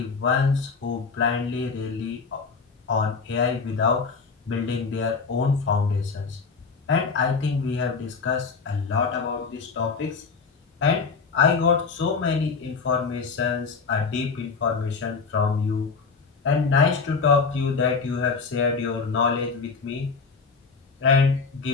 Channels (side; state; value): right; quieter; 4.9 dB